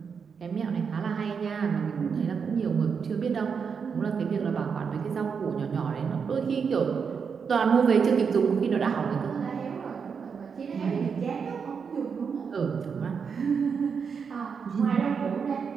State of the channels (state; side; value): quieter; left; 6.2 dB